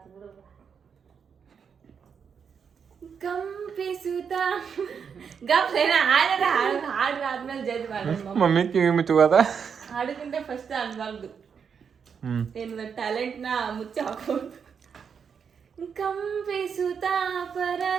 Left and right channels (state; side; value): quieter; left; 6.7 dB